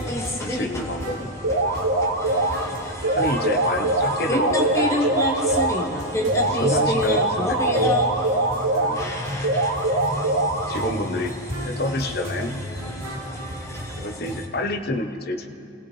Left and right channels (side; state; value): both; normal; correlation 0.02